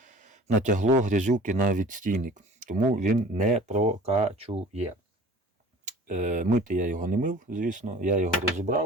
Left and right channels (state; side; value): normal; both; correlation 0.45